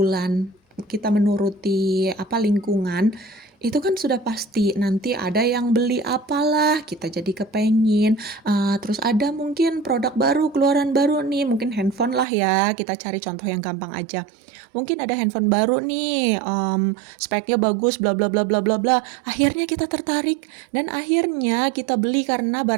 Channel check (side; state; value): left; drops out; at 12.2 s